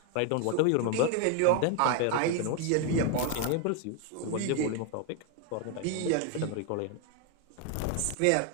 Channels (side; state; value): both; different; correlation 0.01